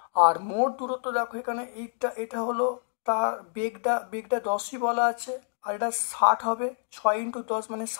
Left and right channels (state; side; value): silent; right; digital silence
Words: আর মোট দূরত্ব দেখো এখানে এটা হলো তার বেগটা 10ই বলা আছে, আর এটা 60 হবে, 6 × 10 মানে